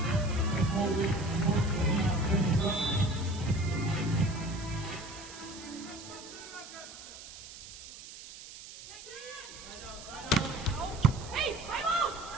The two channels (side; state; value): right; noise; hiss, 15 dB below the sound